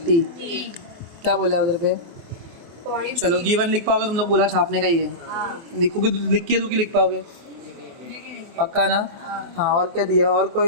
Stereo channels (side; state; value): left; late; 24 ms